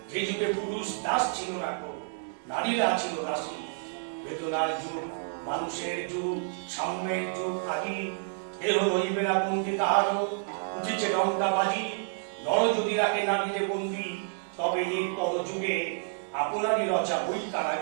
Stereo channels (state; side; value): silent; left; 58 dB below the other